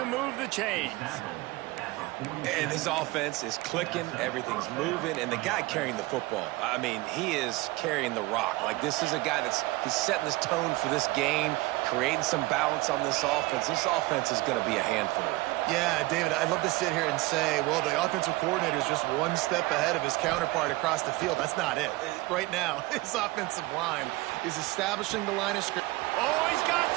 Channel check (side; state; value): left; quieter; 21.0 dB